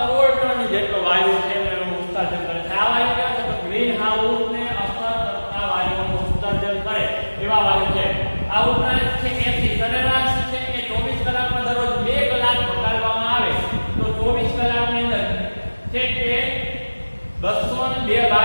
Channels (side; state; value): both; inverted; correlation -1.00